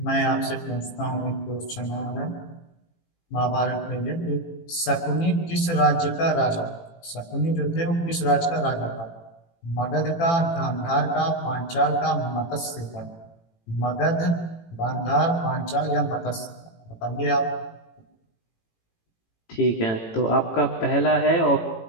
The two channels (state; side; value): late; right; 18 ms